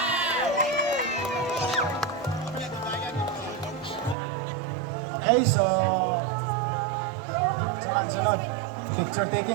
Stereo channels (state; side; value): drops out; left; at 4.2 s